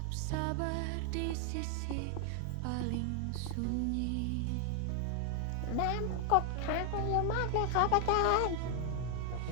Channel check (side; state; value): both; different; correlation 0.00